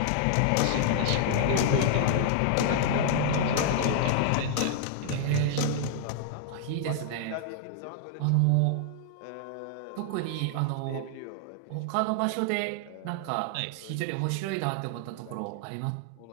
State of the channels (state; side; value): different; both; correlation -0.01